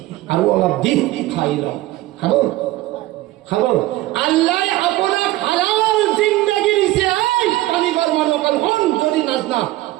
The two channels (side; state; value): left; quieter; 17.2 dB